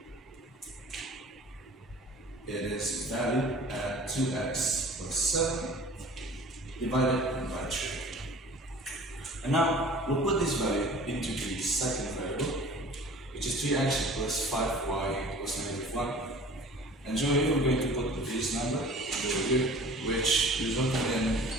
it is valued at 2x plus 7 divided by 3. And now we'll put this value into the second variable, which is 3x plus 5y plus negative 1. And so here we're going to put this number over here, which resulted in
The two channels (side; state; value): both; normal; correlation 0.45